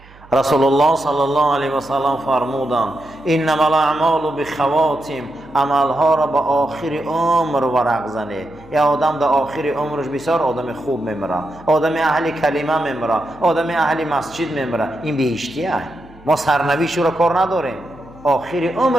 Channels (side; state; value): right; noise; hum, 24 dB below the sound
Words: رسول الله صلی الله علیه و سلم فرمودند انما الاعمال بخواتم، عملها را به آخر عمر ورق زنه. یا آدم در آخر عمرش بسیار آدم خوب میمیره، آدم اهل کلمه میمیره، آدم اهل مسجد میمیره، این بهشتیه. ما سرنوشت رو کار نداریم، آخر